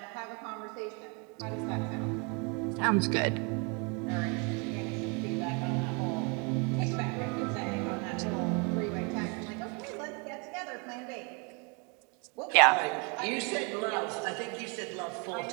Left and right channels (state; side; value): quieter; left; 33.0 dB